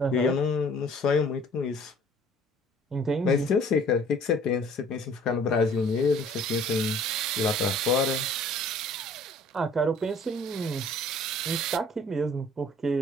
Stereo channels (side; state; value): both; normal; correlation 0.53